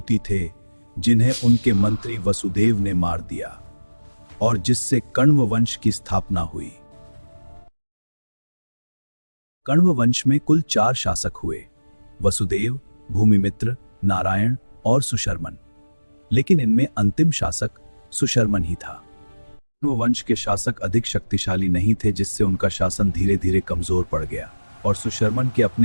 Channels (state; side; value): inverted; both; correlation -1.00